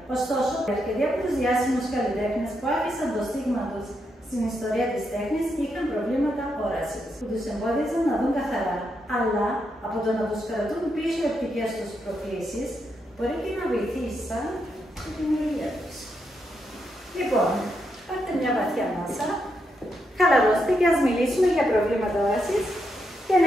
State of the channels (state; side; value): normal; both; correlation 0.81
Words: Ωστόσο, αρκετοί από τους διάσημους καλλιτέχνες που άφησαν το στίγμα τους στην ιστορία της τέχνης είχαν προβλήματα όρασης, που τους εμπόδιζαν να δουν καθαρά. Αλλά από το να τους κρατούν πίσω οι οπτικές τους προκλήσεις, μπορεί και να βοηθήσαν στη δημιουργία τους. Λοιπόν, πάρτε μια βαθιά ανάσα, χαλαρώστε και ας μιλήσουμε για προβλήματα όρασης και